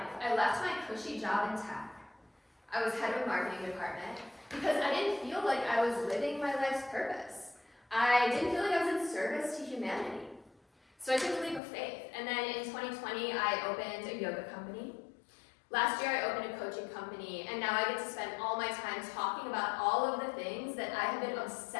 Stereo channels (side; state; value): right; drops out; at 11.6 s